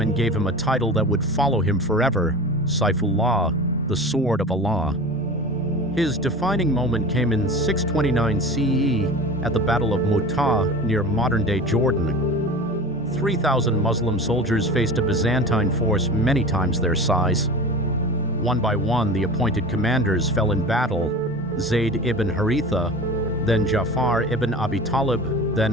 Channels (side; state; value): both; normal; correlation 0.34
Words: and gave him a title that would follow him forever, Saifullah, the Sword of Allah. His defining moment came in 629 CE at the Battle of Mu'tah near modern-day Jordan. 3,000 Muslim soldiers faced a Byzantine force many times their size. One by one, the appointed commanders fell in battle: Zayd ibn Haritha, then Ja'far ibn Abi Talib,